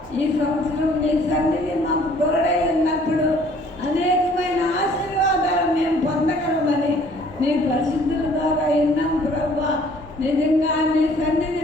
ఈ సంవత్సరం నీ సన్నిధి మాకు తోడై ఉన్నప్పుడు అనేకమైన ఆశీర్వాదాలు మేము పొందగలమని నీ పరిశుద్ధుల ద్వారా విన్నాం ప్రభా. నిజంగా నీ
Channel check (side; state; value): both; normal; correlation 0.57